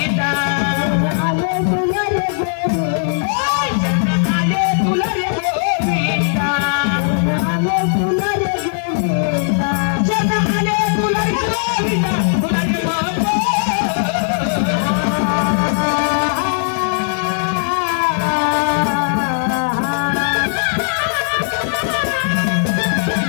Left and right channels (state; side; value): silent; right; digital silence